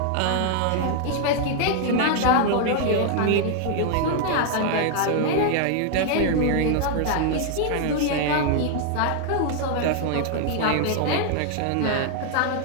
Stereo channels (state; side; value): different; both; correlation 0.00